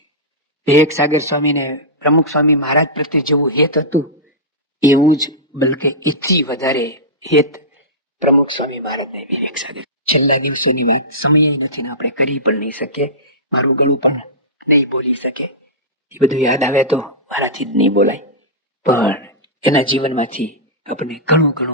વિવેક સાગર સ્વામીને પ્રમુખ સ્વામી મહારાજ પ્રત્યે જેવું હેત હતું એવું જ, બલકે એથી વધારે હેત પ્રમુખ સ્વામી મહારાજને વિવેક સાગર. છેલ્લા દિવસોની વાત સમય નથી ને આપણે કરી પણ નહીં શકીએ, મારું ગળું પણ નહીં બોલી શકે. એ બધું યાદ આવે તો મારાથી જ નહીં બોલાય, પણ એના જીવનમાંથી આપણને ઘણું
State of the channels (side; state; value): both; normal; correlation -0.16